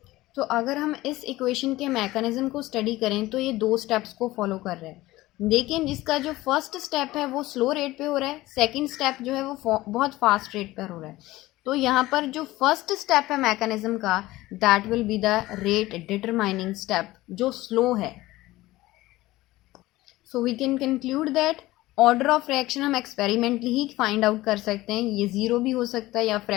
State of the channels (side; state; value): right; quieter; 17.8 dB